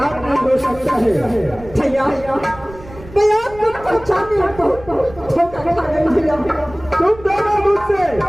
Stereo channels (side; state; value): right; noise; rumble, 18 dB below the sound